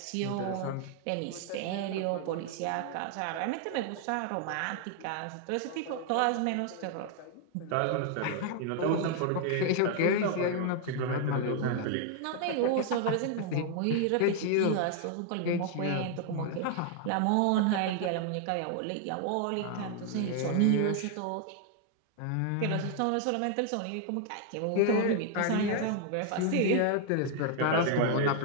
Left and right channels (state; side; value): different; both; correlation 0.00